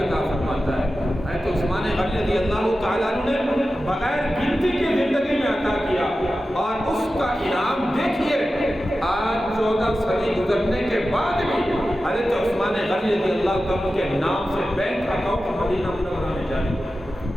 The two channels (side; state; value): both; normal; correlation 0.93